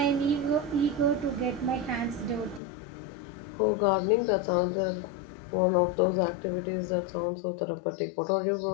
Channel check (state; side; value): drops out; right; at 2.6 s